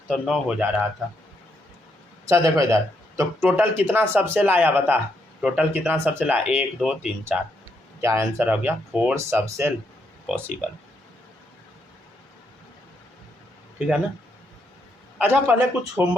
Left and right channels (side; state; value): both; normal; correlation 0.77